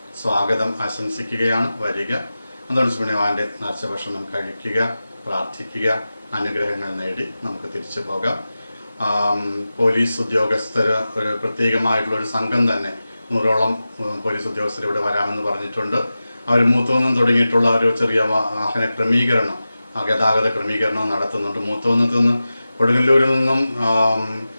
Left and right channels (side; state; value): both; inverted; correlation -0.95